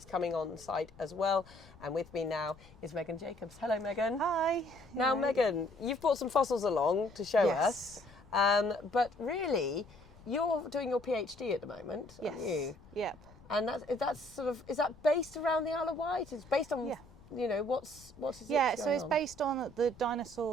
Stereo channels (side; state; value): left; noise; rumble, 23 dB below the sound